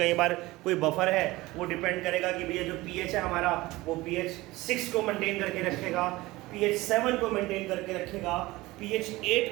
बार कोई बफर है वो डिपेंड करेगा कि भैया जो pH है हमारा वो pH 6 को मेंटेन करके रखेगा, pH 7 को मेंटेन करके रखेगा, pH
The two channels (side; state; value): left; quieter; 19.7 dB